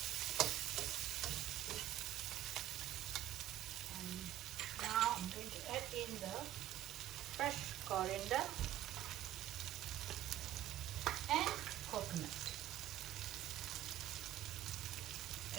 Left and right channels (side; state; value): left; quieter; 13.0 dB